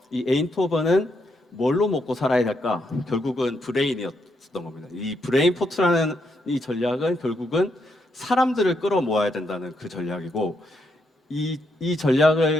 이 에인트호벤은 뭘로 먹고 살아야 될까? 결국은 브레인이었던 겁니다. 이 브레인포트라는 이 전략은 결국은 사람들을 끌어모아야 된다는 그 전략이고, 이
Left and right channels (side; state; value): both; normal; correlation 0.78